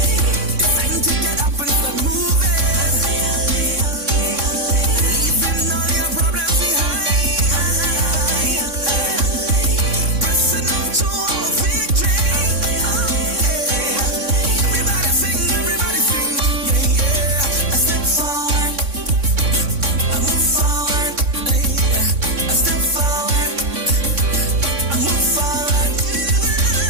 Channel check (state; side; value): late; left; 3.6 ms